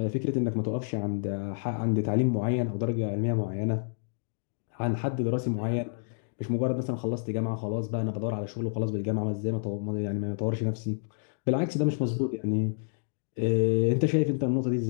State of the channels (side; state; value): right; silent; digital silence